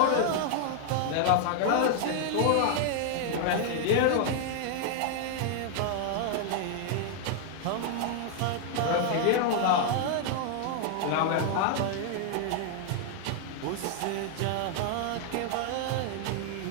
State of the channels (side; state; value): both; different; correlation 0.00